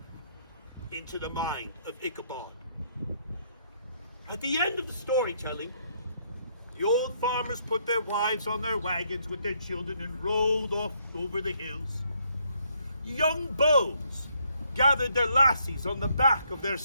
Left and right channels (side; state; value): both; inverted; correlation -0.71